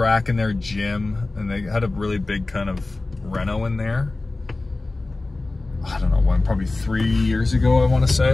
in there, gym, and they had a really big kind of reno in there. I don't know when, probably 3 years ago, I want to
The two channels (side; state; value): right; quieter; 3.2 dB